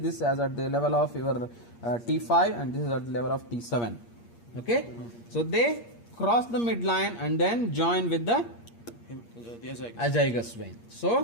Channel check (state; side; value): late; right; 8.5 ms